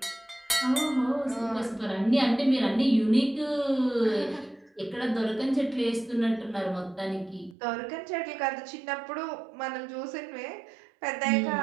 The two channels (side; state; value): left; drops out; at 7.6 s